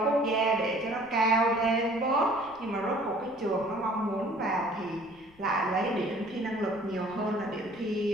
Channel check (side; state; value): left; noise; rumble, 27 dB below the sound